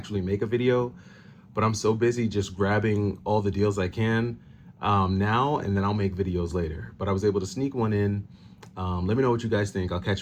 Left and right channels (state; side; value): identical; both; correlation 1.00